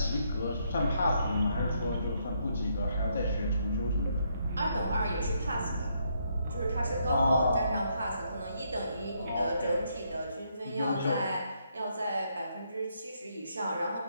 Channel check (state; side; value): inverted; both; correlation -0.74